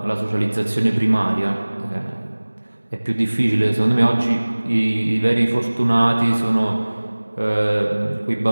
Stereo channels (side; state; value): both; inverted; correlation -1.00